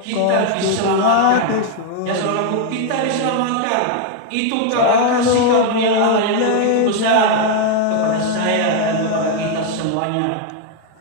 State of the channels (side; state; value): both; different; correlation 0.00